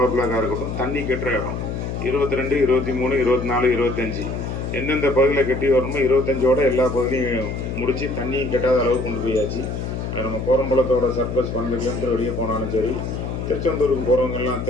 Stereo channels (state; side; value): noise; left; hum, 4 dB below the sound